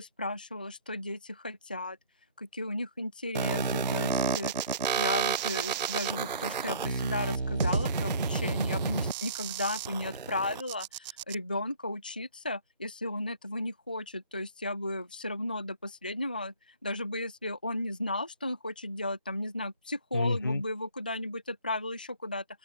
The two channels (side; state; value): both; inverted; correlation -0.53